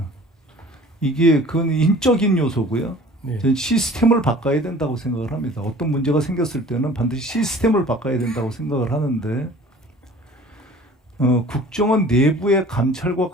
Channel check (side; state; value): both; normal; correlation 0.47